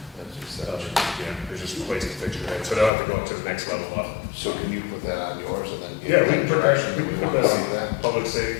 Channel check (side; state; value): right; drops out; at 2.9 s